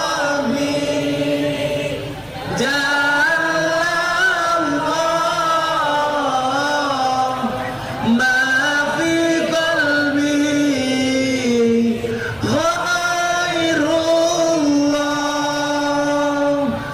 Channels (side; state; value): both; identical; correlation 1.00